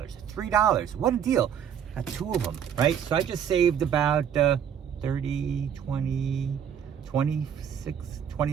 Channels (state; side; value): quieter; left; 8.5 dB